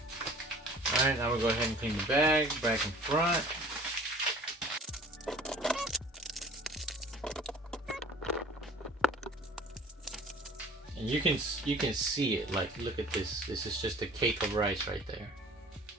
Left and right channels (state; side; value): normal; both; correlation 0.47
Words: Alright, now we'll go ahead and clean the bag, back and front. And you can see it, like look at this. This is just a cake of rice right there.